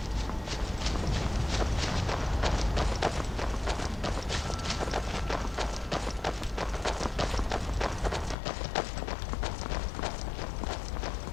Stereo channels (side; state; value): right; drops out; at 8.3 s